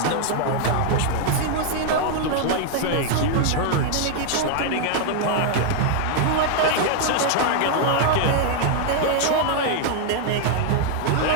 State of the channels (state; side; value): different; both; correlation 0.00